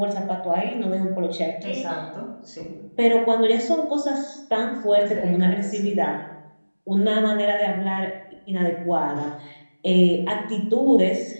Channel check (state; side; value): inverted; both; correlation -1.00